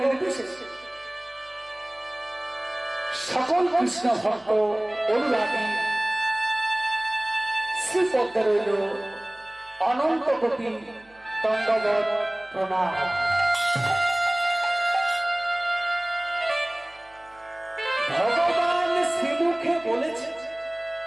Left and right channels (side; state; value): right; noise; hum, 29 dB below the sound